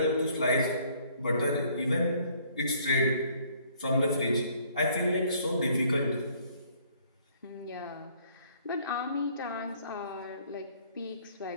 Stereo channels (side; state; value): both; inverted; correlation -0.61